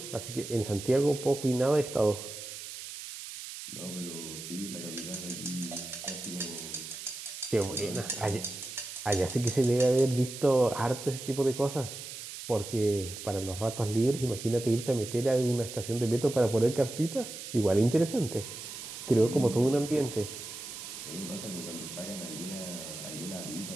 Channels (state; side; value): noise; right; hiss, 10 dB below the sound